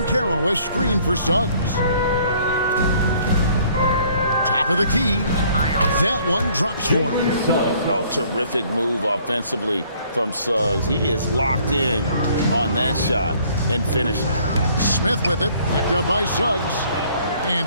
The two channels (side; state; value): both; inverted; correlation -0.60